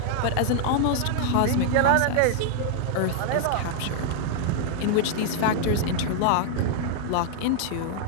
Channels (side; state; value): both; different; correlation -0.01